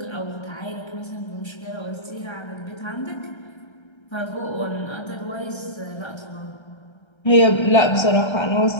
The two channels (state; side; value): late; right; 1.3 ms